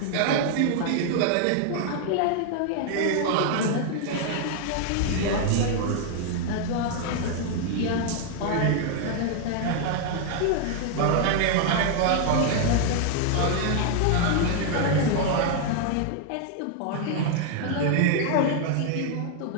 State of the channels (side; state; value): both; different; correlation 0.00